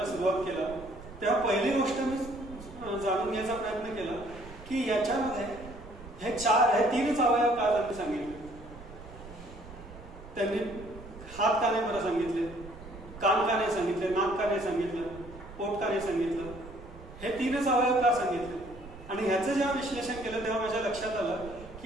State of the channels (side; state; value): right; noise; rumble, 16 dB below the sound